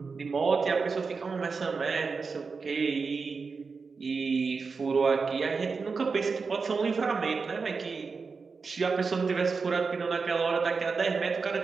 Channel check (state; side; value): quieter; left; 4.8 dB